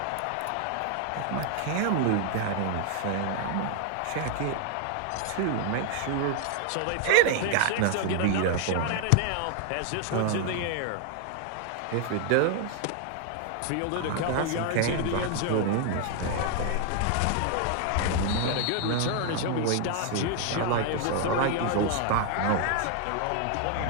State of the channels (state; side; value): different; both; correlation 0.00